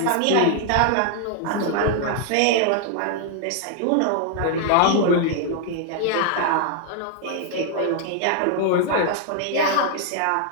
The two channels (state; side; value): different; both; correlation 0.00